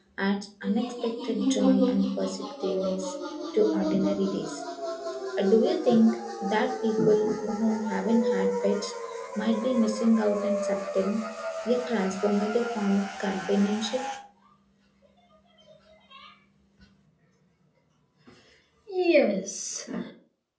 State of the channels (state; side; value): identical; both; correlation 1.00